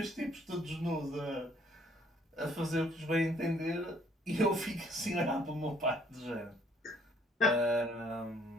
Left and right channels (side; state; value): both; normal; correlation 0.63